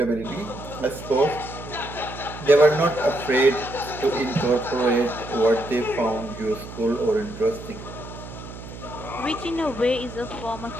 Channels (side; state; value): right; noise; hum, 12 dB below the sound